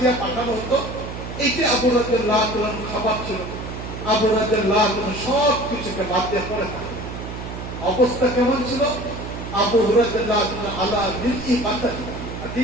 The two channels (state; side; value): noise; right; hum, 9 dB below the sound